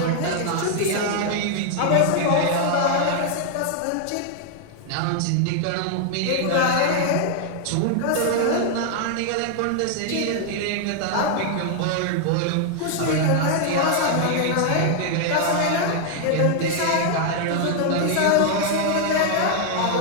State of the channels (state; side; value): different; both; correlation 0.00